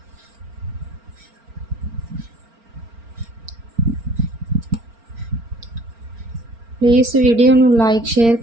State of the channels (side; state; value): left; late; 4.4 ms